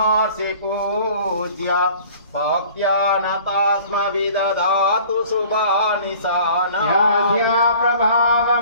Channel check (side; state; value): both; inverted; correlation -0.49